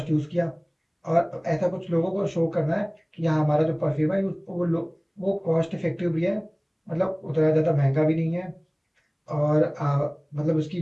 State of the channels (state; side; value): identical; both; correlation 1.00